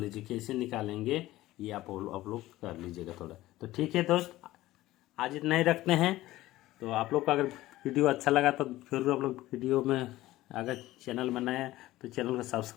कैसे निकालेंगे ये आप लोग कर लीजिएगा थोड़ा। तो ठीक है दोस्त, आज इतना ही रखते हैं। तो आप लोग का अगर वीडियो अच्छा लगा तो जरूर आप लोग वीडियो में, अगर चैनल में नए हैं तो चैनल को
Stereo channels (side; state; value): right; quieter; 16.5 dB